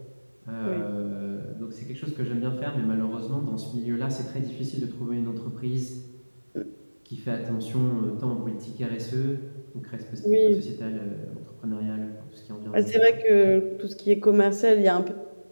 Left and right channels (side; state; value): both; inverted; correlation -1.00